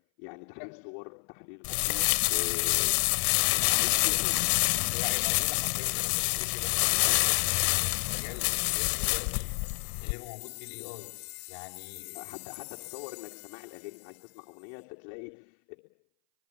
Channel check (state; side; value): silent; right; 58 dB below the other